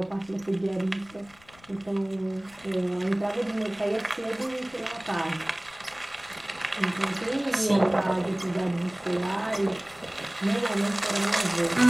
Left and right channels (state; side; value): noise; left; rumble, 27 dB below the sound